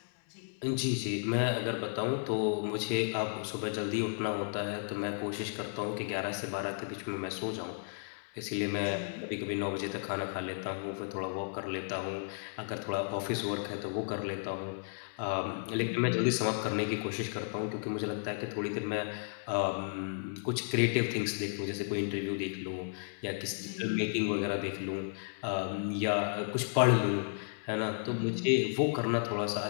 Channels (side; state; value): right; silent; 55 dB below the other